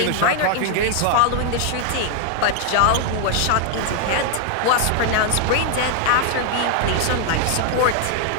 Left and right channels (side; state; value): both; different; correlation 0.00